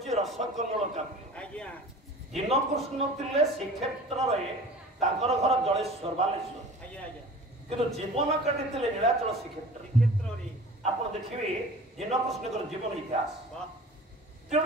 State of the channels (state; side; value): normal; both; correlation 0.42